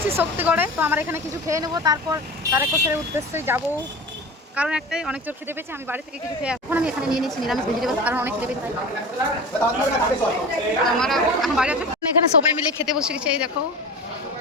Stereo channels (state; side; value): normal; both; correlation 0.32